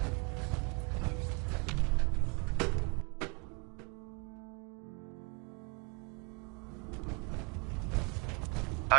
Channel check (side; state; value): left; quieter; 30.3 dB